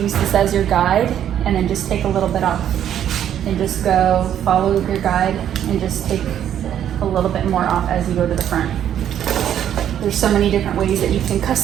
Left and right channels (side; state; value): left; quieter; 10.2 dB